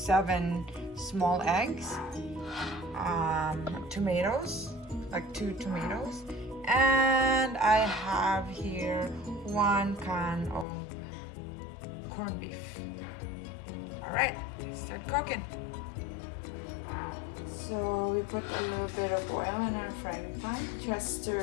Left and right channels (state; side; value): drops out; right; at 10.7 s